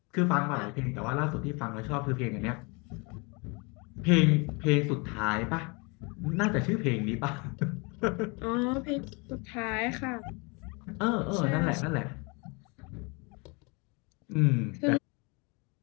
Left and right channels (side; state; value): right; quieter; 30.0 dB